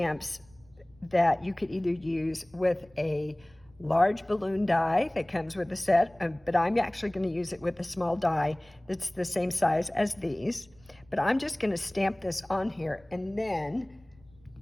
that you could either use with a large balloon die that comes with the set, but I'm actually going to use it with a small die that's the same size as these. But I'm just going to stamp this on here and then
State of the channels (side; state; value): right; noise; rumble, 29 dB below the sound